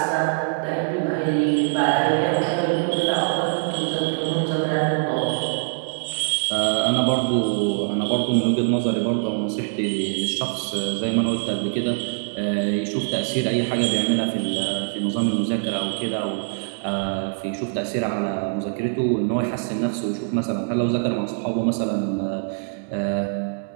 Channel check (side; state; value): left; silent; digital silence